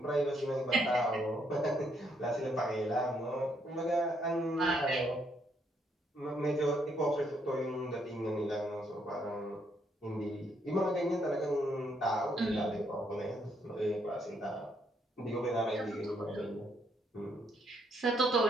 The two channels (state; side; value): normal; both; correlation 0.73